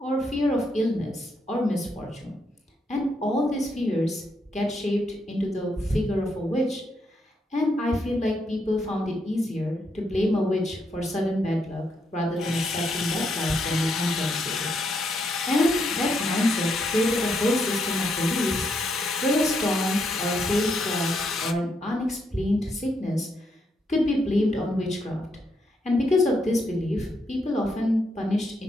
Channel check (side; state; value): both; normal; correlation 0.78